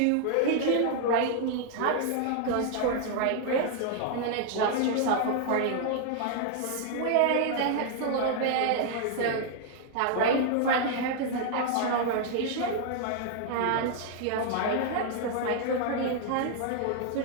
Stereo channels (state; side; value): different; both; correlation 0.00